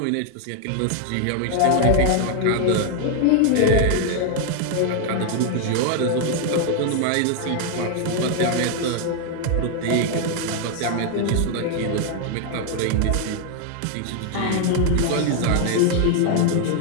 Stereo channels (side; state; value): both; different; correlation 0.00